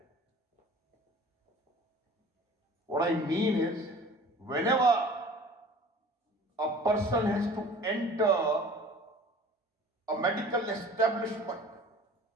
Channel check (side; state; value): both; normal; correlation 0.45